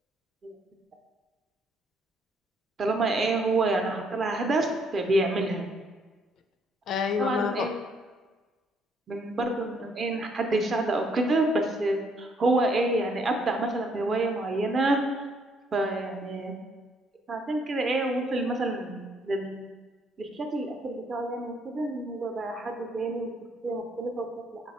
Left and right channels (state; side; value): normal; both; correlation 0.68